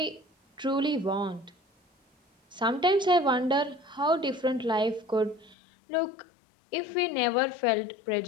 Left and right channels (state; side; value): drops out; right; at 5.6 s